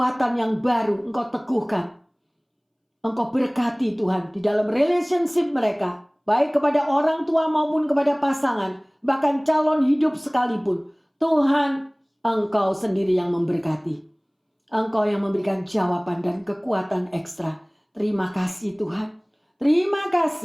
yang baru Engkau teguhkan. Engkau berkati Tuhan di dalam relationship mereka. Baik kepada orang tua maupun kepada pasangan. Bahkan calon hidup sekalipun. Tuhan, Engkau sendiri yang memberkati. Engkau yang memberikan jawaban dan kekuatan ekstra. Terima kasih Tuhan. Terima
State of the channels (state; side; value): identical; both; correlation 1.00